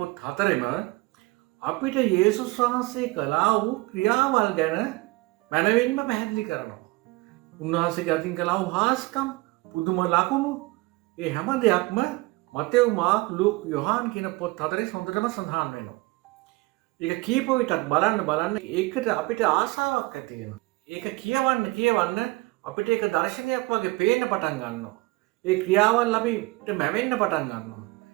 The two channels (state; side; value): quieter; left; 22.9 dB